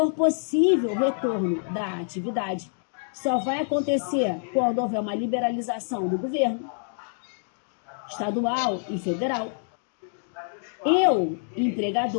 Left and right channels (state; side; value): silent; right; 61 dB below the other